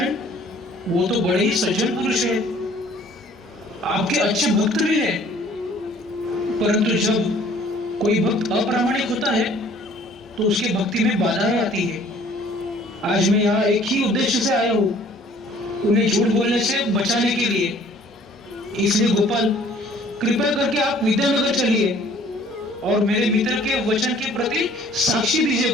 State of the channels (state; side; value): normal; both; correlation 0.55